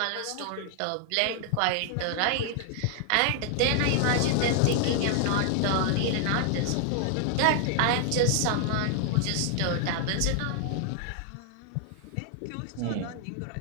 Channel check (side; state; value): both; different; correlation 0.00